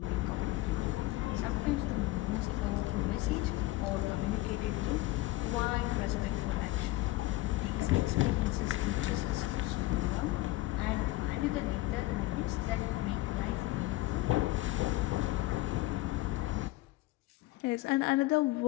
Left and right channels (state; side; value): quieter; right; 18.4 dB